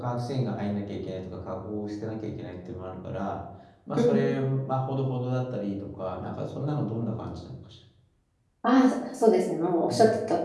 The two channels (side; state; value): both; identical; correlation 1.00